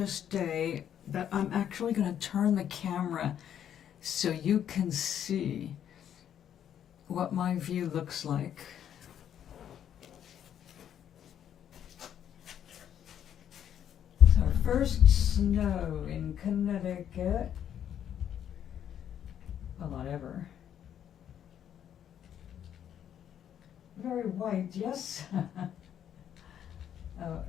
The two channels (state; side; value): quieter; right; 9.7 dB